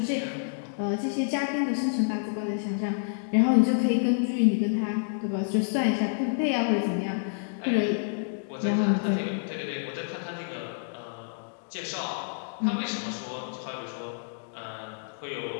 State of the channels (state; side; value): silent; right; digital silence